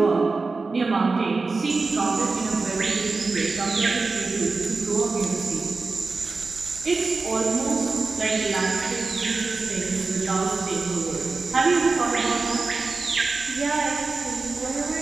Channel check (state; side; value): quieter; left; 3.9 dB